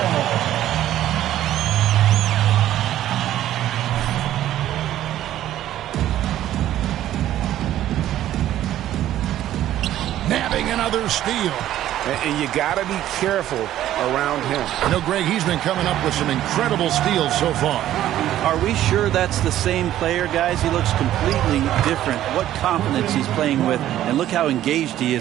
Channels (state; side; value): quieter; left; 12.7 dB